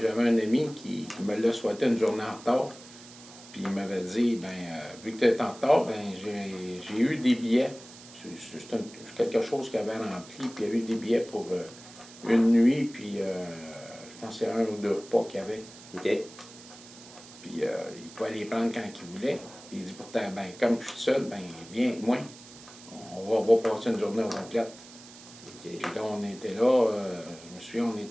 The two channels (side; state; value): right; noise; hiss, 19 dB below the sound